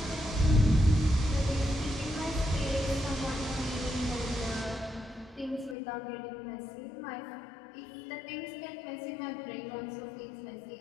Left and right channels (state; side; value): drops out; right; at 5.8 s